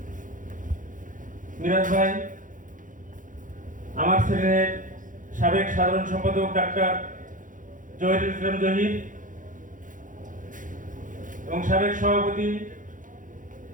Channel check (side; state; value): left; late; 0.38 ms